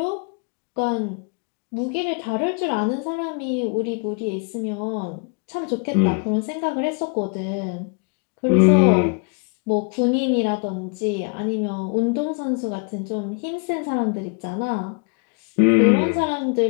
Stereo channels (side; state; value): right; quieter; 34.6 dB